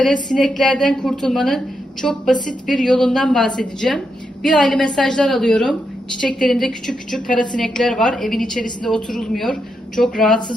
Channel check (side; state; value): both; normal; correlation 0.83